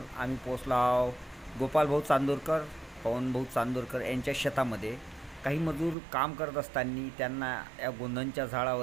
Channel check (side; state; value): left; drops out; at 6.0 s